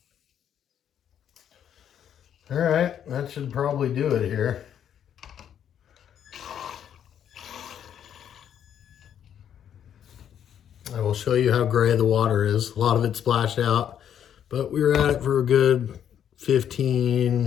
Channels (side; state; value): right; quieter; 9.4 dB